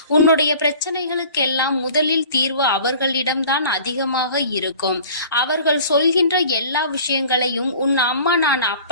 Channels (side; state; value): both; inverted; correlation -0.44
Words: உன்னுடைய பிரச்சனைகளுக்கெல்லாம் முதலில் தீர்வு அவர்களிடம்தான் அதிகமாக இருக்கும். அவர்கள் சொல்கின்ற எல்லா விஷயங்களையும் உன் அம்மா நான்